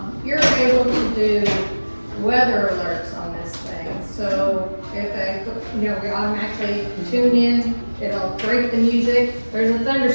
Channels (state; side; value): inverted; both; correlation -1.00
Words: You're able to do weather alerts on this thing, so if we automatically tune in, it'll break the music, there's a